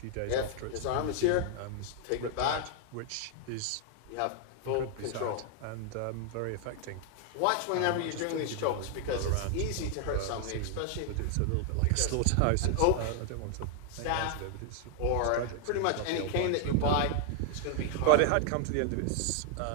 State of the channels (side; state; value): both; different; correlation 0.00